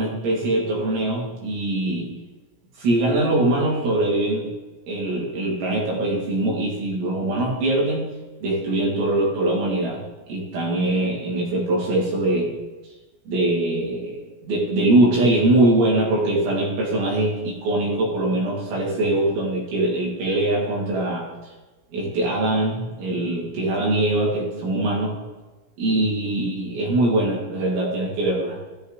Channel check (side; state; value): left; late; 17 ms